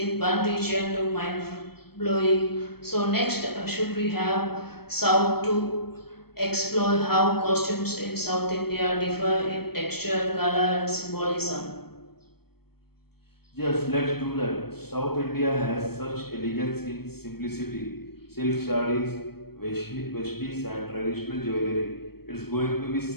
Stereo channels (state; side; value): late; right; 0.96 ms